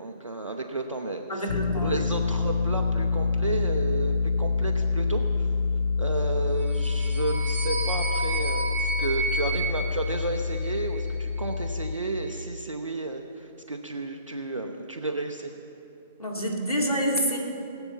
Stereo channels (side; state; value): both; inverted; correlation -0.66